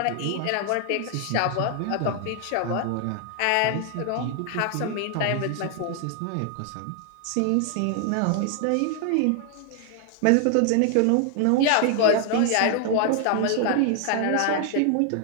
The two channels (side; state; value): both; different; correlation 0.00